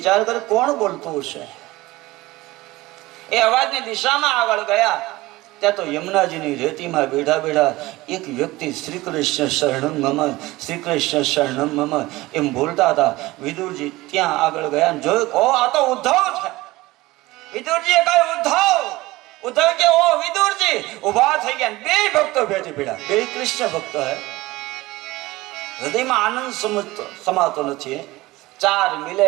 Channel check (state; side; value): quieter; left; 19.4 dB